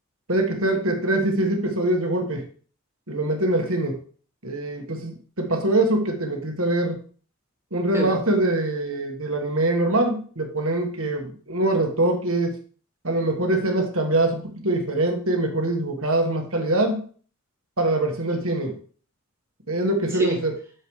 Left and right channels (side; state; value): both; normal; correlation 0.05